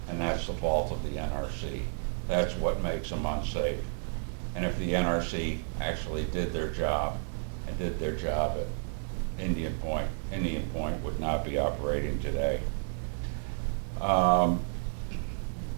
And that's the fault of the NRC. That's what makes them unsafe. And if the NRC actually did their job and did their job at Indian Point would not be operating today.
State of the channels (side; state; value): left; silent; digital silence